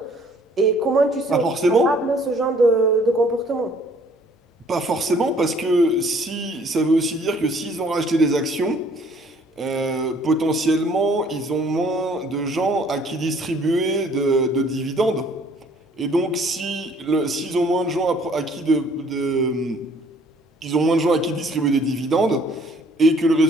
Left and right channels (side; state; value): both; normal; correlation 0.59